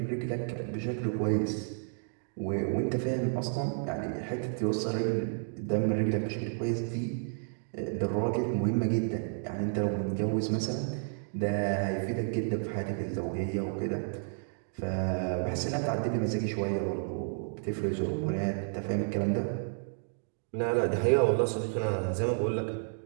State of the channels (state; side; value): silent; left; digital silence